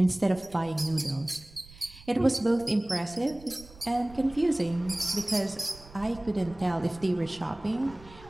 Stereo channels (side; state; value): right; noise; rumble, 21 dB below the sound